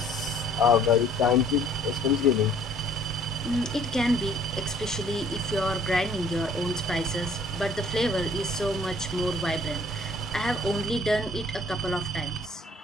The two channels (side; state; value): both; normal; correlation 0.57